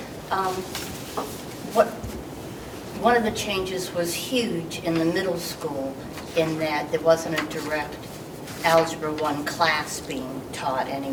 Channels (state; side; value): identical; both; correlation 1.00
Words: Mm-hmm. One of the changes was huge in the middle school in that there wasn't a direct Algebra 1 class being taught